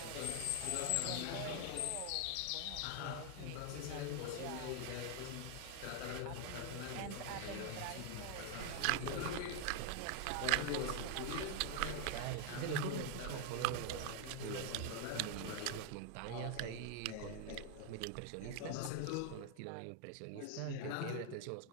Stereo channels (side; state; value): both; different; correlation 0.00